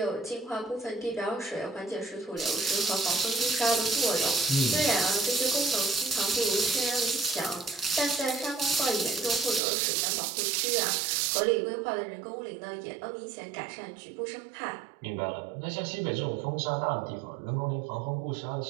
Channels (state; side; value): drops out; left; at 9.6 s